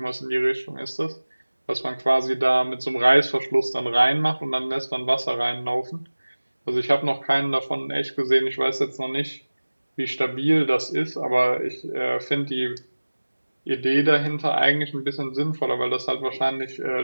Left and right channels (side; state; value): both; inverted; correlation -1.00